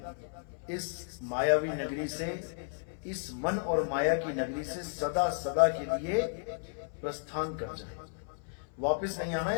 इस मायावी नगरी से, इस मन और माया की नगरी से सदा सदा के लिए प्रस्थान कर जाए। वापस नहीं आना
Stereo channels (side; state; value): right; silent; 56 dB below the other